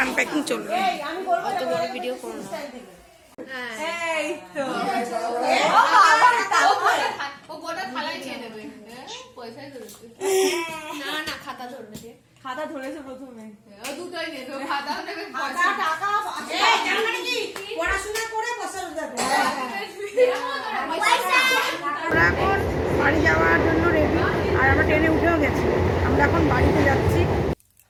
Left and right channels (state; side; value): identical; both; correlation 1.00